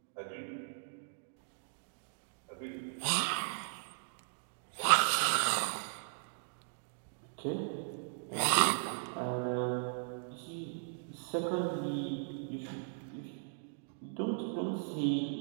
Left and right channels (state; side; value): silent; left; digital silence